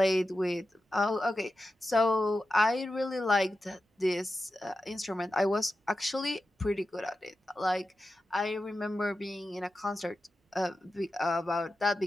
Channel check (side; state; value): both; normal; correlation 0.91